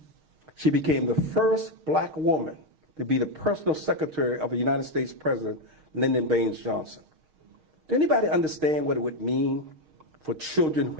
She became the first black woman to be the personal secretary of a United States President, Lyndon Baines Johnson. Do anybody understand what it would mean for children who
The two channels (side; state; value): left; late; 6.4 ms